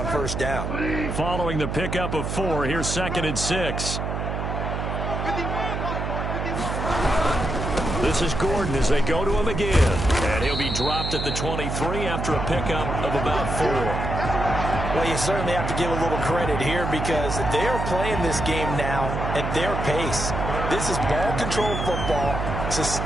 first down. Following the pickup of 4, here's 2nd and 6. This is Gordon as they go to him again. And he'll be dropped at the 23 after a pickup of about 4. Well, you certainly have to give a little credit here because they're playing this game now at their pace. This is ball control football,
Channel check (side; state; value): right; noise; hum, 3 dB below the sound